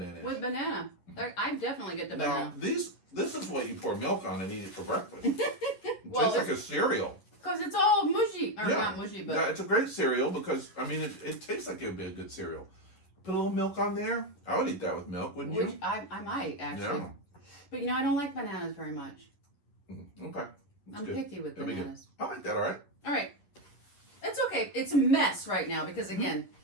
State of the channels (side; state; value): right; late; 11 ms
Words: With banana. I definitely get the banana. Now, this is what you pour milk on and eat it for breakfast. It Well, tastes like a cereal. Because it's all mushy. Or not mushy, but... Yeah, it's a great cereal because, I mean, it tastes like it would be a good cereal. Put a little milk on there. I would eat that with milk, wouldn't you? I might, actually. Yeah. But, I don't like bananas very much. Okay. That's I'm good. picky with That'd be good. bananas. I like that, all right. All right. It's okay. It's a mess right now because, again,